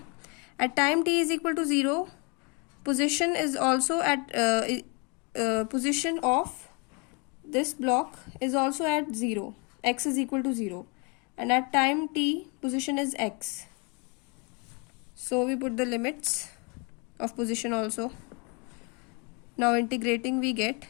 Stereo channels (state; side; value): quieter; right; 32.7 dB